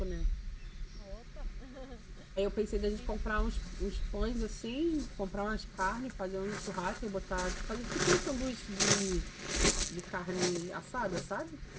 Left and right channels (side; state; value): both; identical; correlation 1.00